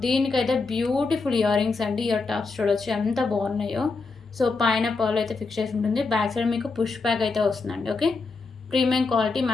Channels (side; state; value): right; quieter; 4.1 dB